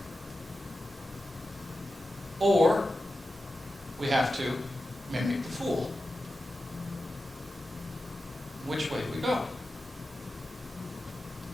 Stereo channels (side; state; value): both; normal; correlation 0.92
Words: or we have to mimic the fool. Which way do we go?